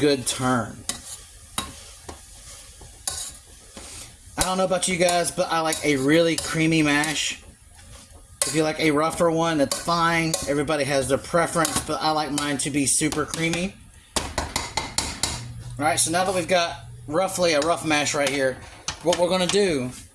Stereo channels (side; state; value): both; identical; correlation 1.00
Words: turn. I don't know about you guys, but I like a really creamy mash. If you like a rougher one, that's fine. Everybody has their preference, but I like mine to be super creamy. Alright, so now that we've got roughly a rough mash right here, what we're going to do